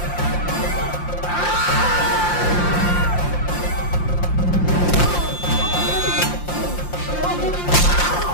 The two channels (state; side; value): late; right; 5.7 ms